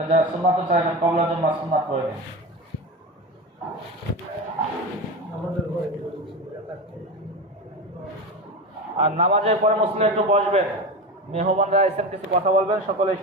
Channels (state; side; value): normal; both; correlation 0.23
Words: যারা সুন্নাত চাইবেন কবলার জন্য সুন্নাত করে দিন। আর নামাজের পরে মুসলিম একটু বসবেন, মেহমানরা এসে কিছু কথা বলবেন, সকলেই